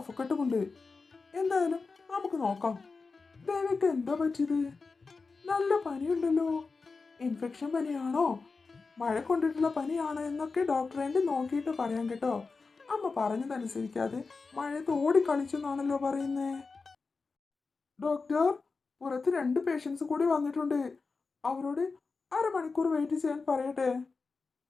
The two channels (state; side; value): quieter; right; 4.3 dB